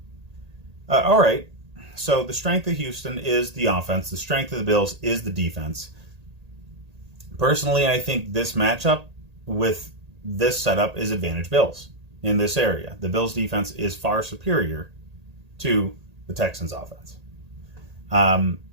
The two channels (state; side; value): late; left; 1.8 ms